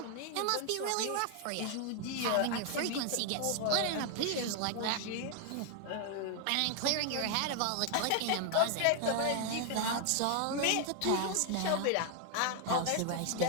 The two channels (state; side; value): different; both; correlation 0.00